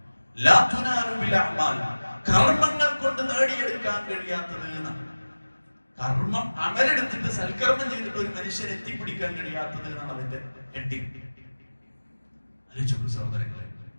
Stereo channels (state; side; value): inverted; both; correlation -1.00